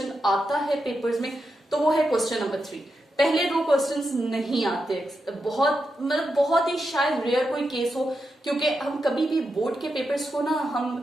आता है पेपर्स में तो वो है क्वेश्चन नंबर 3. पहले 2 क्वेश्चंस नहीं आते, बहुत ही शायद रेयर कोई केस हो, क्योंकि हम कभी भी बोर्ड के पेपर्स को ना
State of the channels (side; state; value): both; normal; correlation 0.86